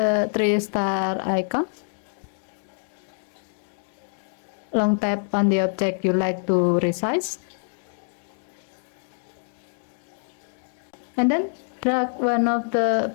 3-star icon. Long tap on the object you like to resize. And then drag one of the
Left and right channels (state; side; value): silent; right; 59 dB below the other